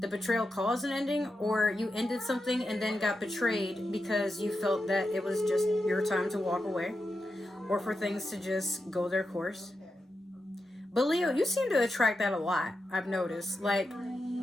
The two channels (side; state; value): both; normal; correlation 0.88